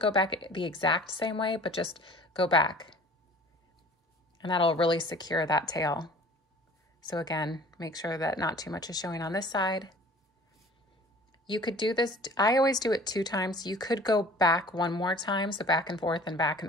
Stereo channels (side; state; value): both; normal; correlation 0.48